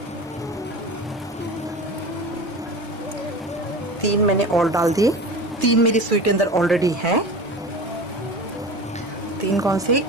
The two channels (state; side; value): normal; both; correlation 0.33